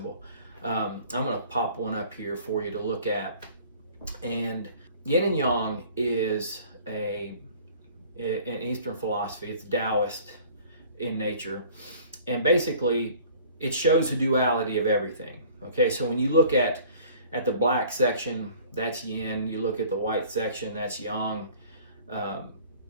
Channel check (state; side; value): inverted; both; correlation -0.50